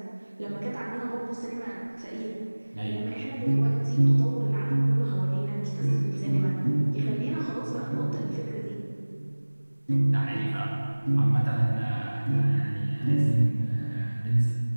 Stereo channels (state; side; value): inverted; both; correlation -1.00